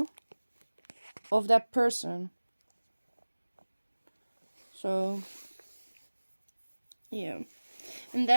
of that person. So yeah, and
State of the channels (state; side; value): inverted; both; correlation -1.00